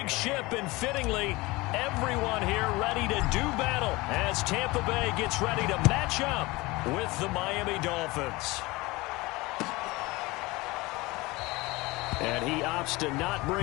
ship, and fittingly, everyone here ready to do battle as Tampa Bay gets ready to match up with the Miami Dolphins. And he opts to not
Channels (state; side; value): quieter; right; 22.1 dB